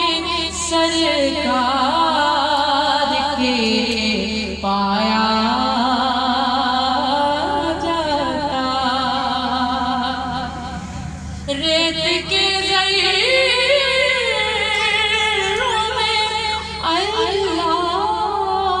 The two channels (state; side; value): identical; both; correlation 1.00